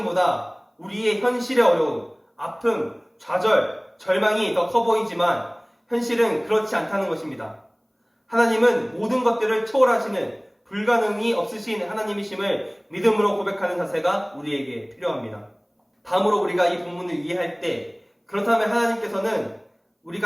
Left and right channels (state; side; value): identical; both; correlation 1.00